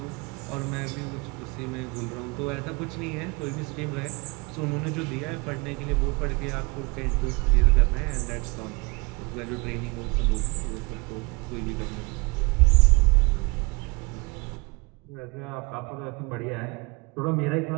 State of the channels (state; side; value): quieter; left; 28.0 dB